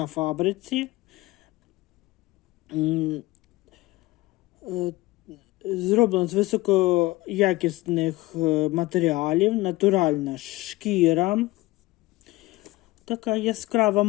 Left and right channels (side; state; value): right; quieter; 19.7 dB